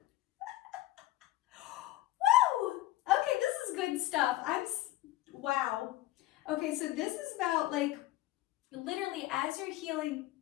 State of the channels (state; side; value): quieter; right; 16.0 dB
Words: Woo! Okay, this is good stuff. Wow. Okay, so this is about literally as you're healing